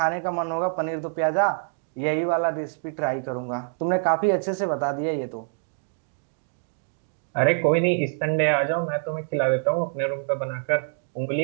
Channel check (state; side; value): silent; left; digital silence